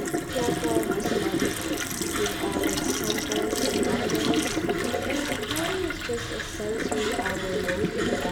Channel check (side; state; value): both; identical; correlation 1.00